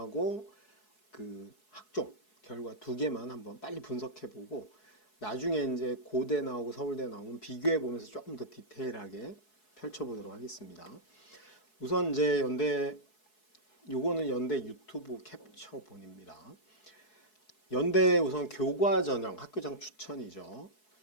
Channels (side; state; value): right; late; 4.7 ms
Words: 그 학종 결과 두 개만 한번 빨리 분석해보고 나중에 이제 고대 나오고 서울대 나오면 비교해 보면서 조금 더 디테일하게 펼쳐보도록 하겠습니다. 우선 이제 요거는 연대 유튜브 캡처본입니다. 연대 우선 교과 전형 학교장 추천이죠.